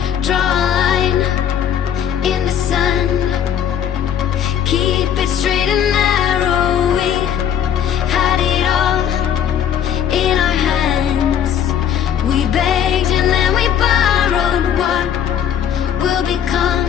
draw a line in the sand, keep it straight and narrow. We had it all in our hands. We begged and then we borrowed. What will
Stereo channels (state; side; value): quieter; right; 9.2 dB